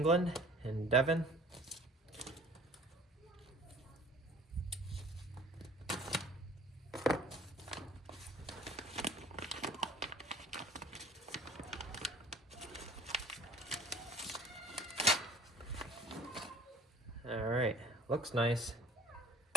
in Devon. All right, looks nice.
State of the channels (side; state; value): both; normal; correlation 0.48